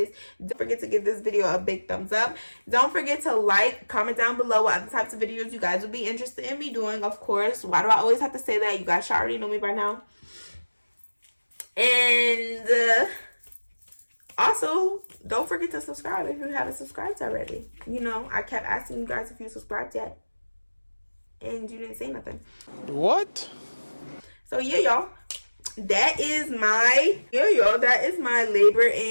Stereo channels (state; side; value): inverted; both; correlation -1.00